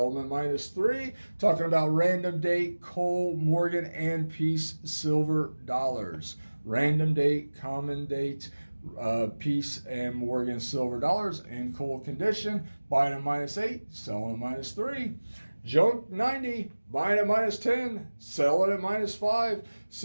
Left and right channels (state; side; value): inverted; both; correlation -1.00